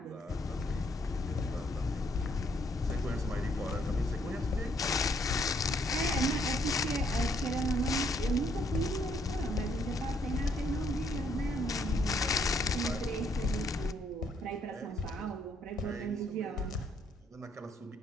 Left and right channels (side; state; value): both; normal; correlation 0.70